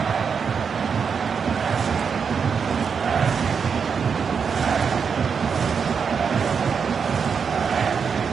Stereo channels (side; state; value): left; quieter; 6.2 dB